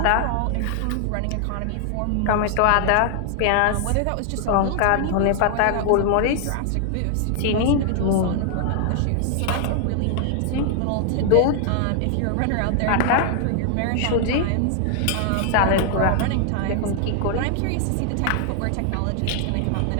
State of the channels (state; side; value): different; both; correlation 0.00